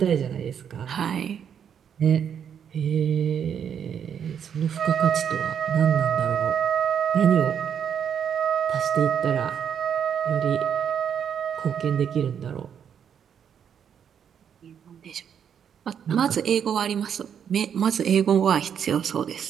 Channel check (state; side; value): quieter; left; 8.1 dB